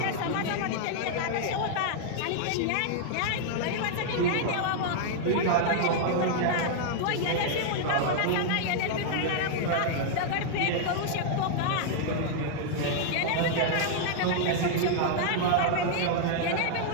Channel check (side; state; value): both; different; correlation -0.01